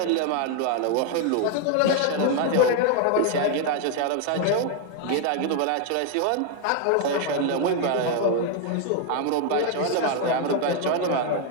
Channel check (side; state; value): both; different; correlation 0.01